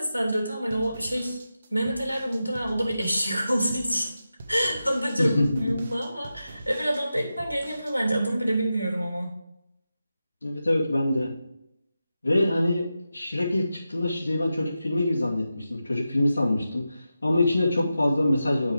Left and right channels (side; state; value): both; inverted; correlation -0.91